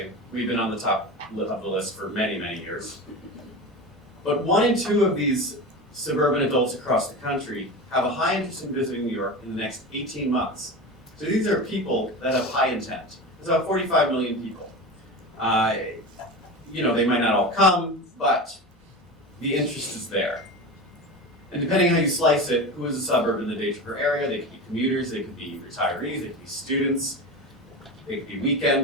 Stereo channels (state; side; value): normal; both; correlation 0.27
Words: We've been on the top of the list for many, many years. But 1 in 2 of these suburban adults across the country have a high interest in visiting New York in the next 18 months. So these are people that have high intent. There's about 45 million people. They might not all come, but the interest is there. And depending on how you slice it, who is a suburb in the day tripper area? They could be commuters, they could be retirees, they could be students, they could be